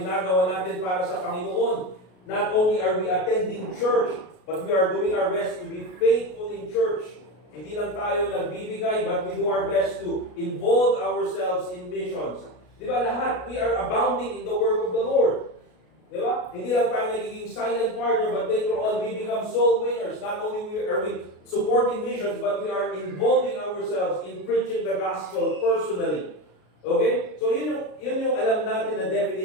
natin para sa Panginoon. Not only are we attending church, but we are doing our best to be faithful in church. Hindi lang tayo nagbibigay, but we do our best to involve ourselves in missions. Di ba lahat? We are abounding in the work of the Lord. Di ba? Hindi lang tayo nagiging silent partner, but later on we become soul winners. Not only are we supporting missions, but we are involving ourselves in preaching the gospel personally. Okay? So yun yung alam natin na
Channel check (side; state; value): right; late; 33 ms